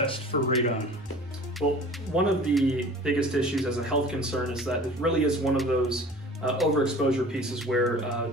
for radon? Well, one of the biggest issues as a health concern is that it really is one of those overexposure pieces where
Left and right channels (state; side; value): normal; both; correlation 0.43